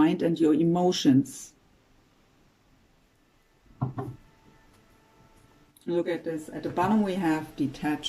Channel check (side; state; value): both; identical; correlation 1.00